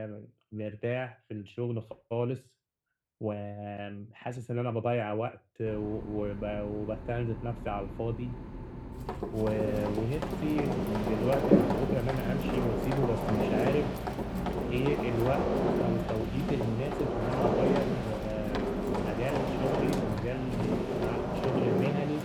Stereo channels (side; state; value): both; identical; correlation 1.00